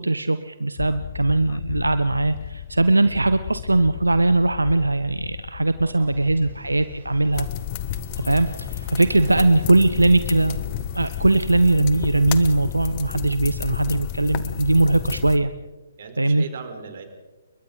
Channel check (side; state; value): both; inverted; correlation -0.94